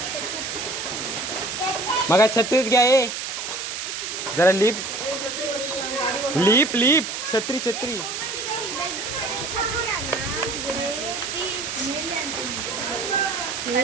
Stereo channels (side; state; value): right; noise; hiss, 5 dB below the sound